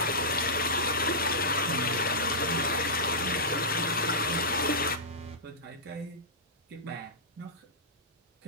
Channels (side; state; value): both; normal; correlation -0.15